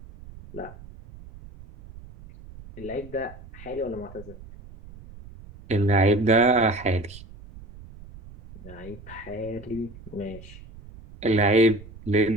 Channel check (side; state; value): right; noise; rumble, 18 dB below the sound